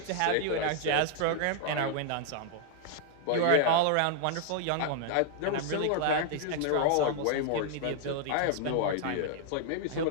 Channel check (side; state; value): both; different; correlation -0.01